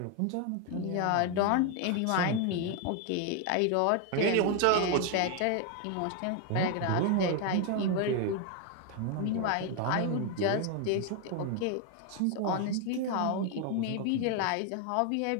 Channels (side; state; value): both; different; correlation 0.01